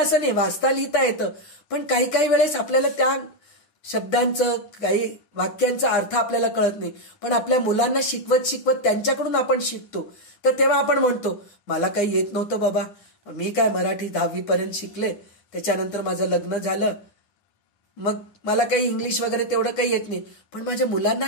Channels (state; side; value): late; right; 9.7 ms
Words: नाही, वाचता लिहिता येतं, पण काही काही वेळेस आपल्याला त्या शब्दांचं, काही वाक्यांचा अर्थ आपल्याला कळत नाही. पण आपल्या मुलांना शिकवत त्यांच्याकडून आपण शिकतो. तर तेव्हा आपण म्हणतो, मला काही येत नव्हतं बाबा, मी काय मराठी 10वी पर्यंत शिकले, त्याच्यानंतर माझं लग्न झालं, मग मला काही इंग्लिश वगैरे तेवढं काही येत नाही, पण माझ्या मुलांना